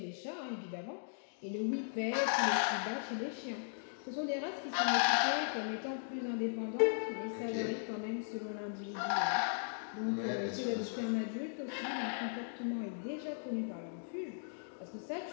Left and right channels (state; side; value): silent; right; digital silence